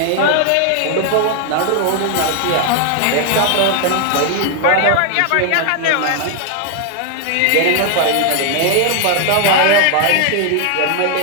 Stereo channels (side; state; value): both; different; correlation 0.00